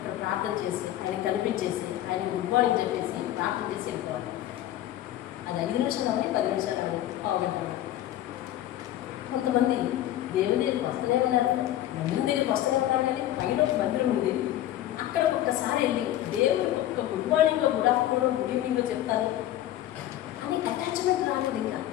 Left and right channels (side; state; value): right; quieter; 13.3 dB